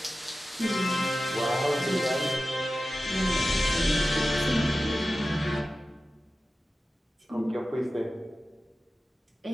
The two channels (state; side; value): normal; both; correlation 0.94